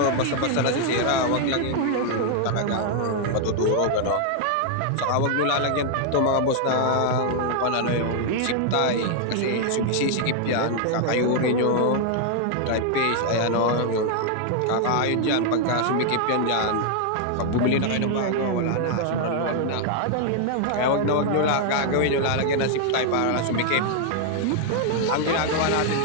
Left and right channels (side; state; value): both; different; correlation 0.00